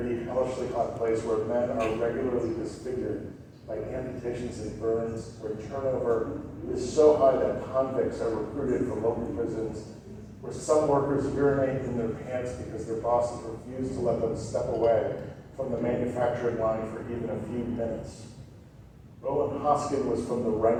hellishly hot place where men are regularly disfigured by amputations and burns, where turnover is so high that convicts are recruited from local prisons, where some workers urinate in their pants because their bosses refuse to let them step away from the manufacturing line for even a few minutes. Roland Hoskin was from the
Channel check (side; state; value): both; identical; correlation 1.00